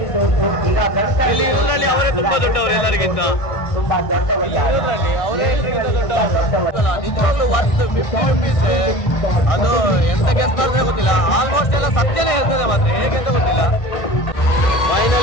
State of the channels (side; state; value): right; late; 1.6 ms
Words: ಇಲ್ಲಿ ಊರಲ್ಲಿ ಅವರೇ ತುಂಬಾ ದೊಡ್ಡವರು ಎಲ್ಲರಿಗಿಂತ. ನಿಜವಾಗ್ಲೂ ವರ್ತ್ 50 ರೂಪೀಸ್. ಅದು ಎಂತ ಗೆಸ್ ಮಾಡಿದ್ರೆ ಗೊತ್ತಿಲ್ಲ, ಆಲ್ಮೋಸ್ಟ್ ಎಲ್ಲ ಸತ್ಯನೇ ಹೇಳ್ತದೆ ಮಾತ್ರ, ಹೇಗೆ ಅಂತ ಗೊತ್ತಿಲ್ಲ.